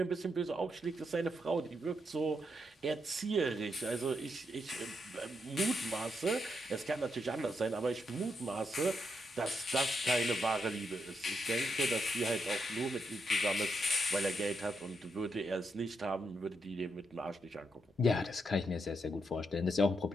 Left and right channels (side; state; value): both; normal; correlation 0.81